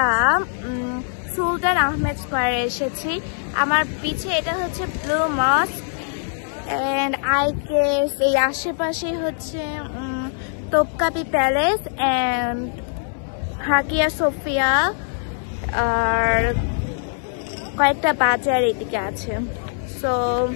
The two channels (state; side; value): silent; right; digital silence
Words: সুলতান আহমেদ স্কয়ারে এসেছি। আমার পিছে এটা হচ্ছে ব্লু মস্ক এন্ড আই গেস এই আশেপাশে হচ্ছে তোপকাপি প্যালেস এন্ড হাকিয়া সোফিয়া আর কয়েকটা বাজার এদিকে আছে। সো